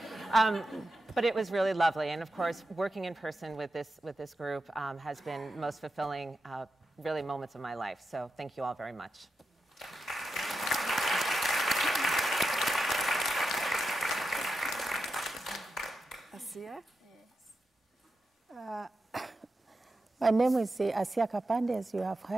But it was really lovely. And of course, working in person with this group has been most fulfilling, really, moments of my life. So thank you all very much. Asia? My name is Asia Kapande, as you have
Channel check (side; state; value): both; normal; correlation 0.89